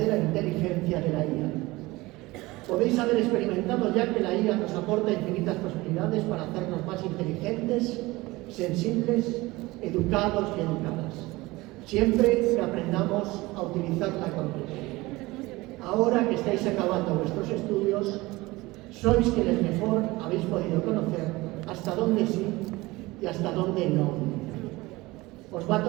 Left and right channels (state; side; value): quieter; left; 20.8 dB